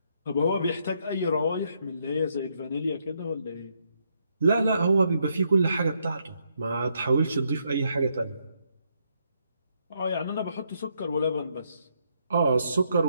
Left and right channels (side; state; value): both; inverted; correlation -0.76